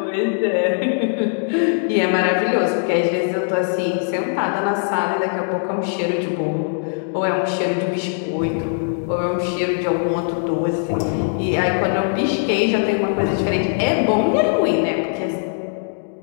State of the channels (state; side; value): silent; right; digital silence